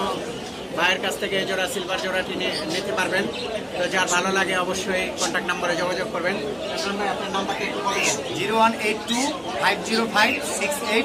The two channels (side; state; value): both; identical; correlation 1.00